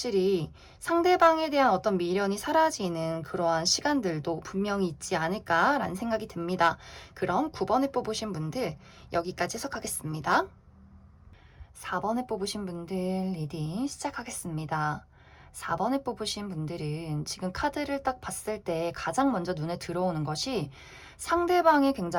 상대방에 대한 어떤 미련이 사라지는 그러한 시간들도 분명히 있지 않을까라는 생각이 듭니다. 그럼 9번을 뽑으신 분들 여기까지 해석하겠습니다. 4번을 뽑으신 분들 리딩 시작하겠습니다. 4번을 뽑으신 분들은 지금 카드를 딱 봤을 때 가장 먼저 눈에 들어오는 것이 상대방이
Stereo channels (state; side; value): identical; both; correlation 1.00